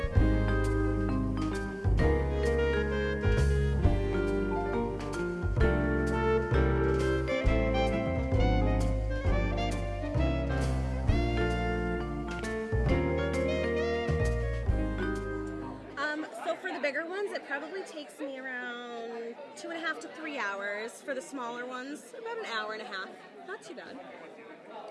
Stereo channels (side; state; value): both; identical; correlation 1.00